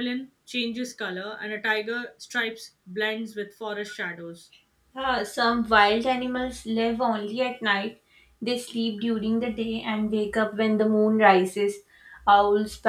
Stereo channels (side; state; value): both; identical; correlation 1.00